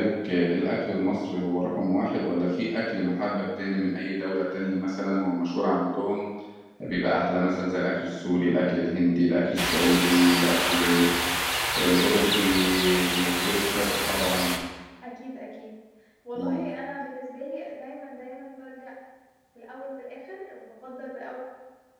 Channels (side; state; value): both; identical; correlation 1.00